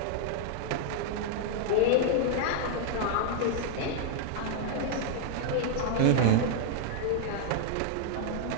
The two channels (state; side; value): different; both; correlation -0.01